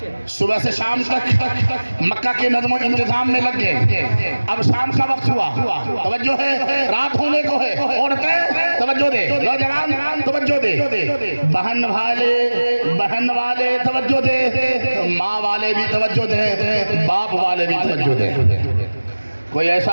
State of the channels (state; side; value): inverted; both; correlation -1.00